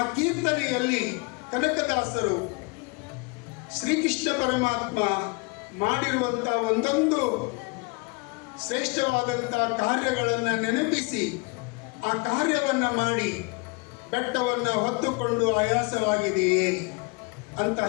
ಕೀರ್ತನೆಯಲ್ಲಿ ಕನಕದಾಸರು ಶ್ರೀಕೃಷ್ಣ ಪರಮಾತ್ಮ ಮಾಡಿರುವಂಥ ಒಂದೊಂದು ಶ್ರೇಷ್ಠವಾದಂಥ ಕಾರ್ಯಗಳನ್ನು ನೆನಪಿಸಿ ಆ ಕಾರ್ಯವನ್ನು ಮಾಡಿ ಬೆಟ್ಟವನ್ನು ಹೊತ್ತುಕೊಂಡು ಆಯಾಸವಾಗಿದೆಯೇ ಅಂತ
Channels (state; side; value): quieter; right; 28.7 dB